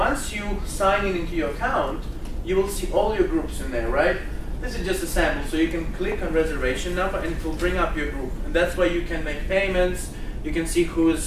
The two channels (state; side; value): identical; both; correlation 1.00